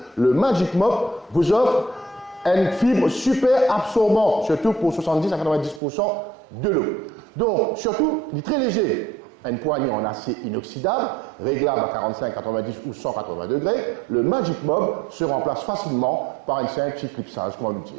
le Magic Mop vous offre une fibre super absorbante, surtout pour 70 à 90% de l'eau. Donc, surtout, il est très léger. une poignée en acier inoxydable, réglable à 45, 90 ou 180 degrés, le Magic Mob se remplace facilement par une simple clipsage, comment nous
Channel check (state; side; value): drops out; left; at 5.8 s